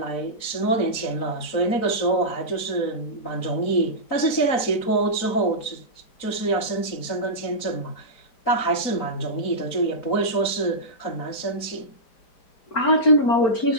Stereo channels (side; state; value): right; late; 4.0 ms